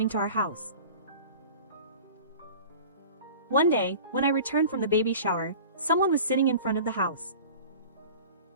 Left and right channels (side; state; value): both; inverted; correlation -0.40